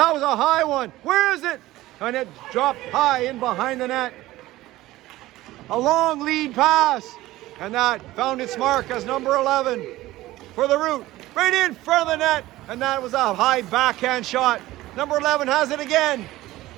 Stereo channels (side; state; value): left; quieter; 17.0 dB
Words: was a high one. Where is it? And it dropped high in behind the net. A long lead pass. And that found its mark as number 11 for the Root. Right in front of the net. And that was a high backhand shot. Number 11 has it again.